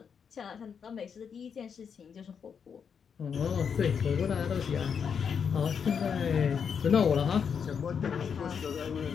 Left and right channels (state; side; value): quieter; right; 6.8 dB